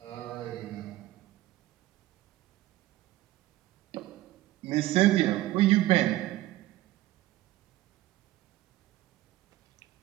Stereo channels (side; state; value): left; quieter; 16.3 dB